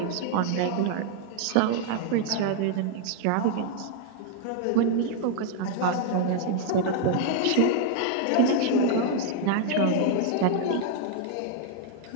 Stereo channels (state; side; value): different; both; correlation 0.00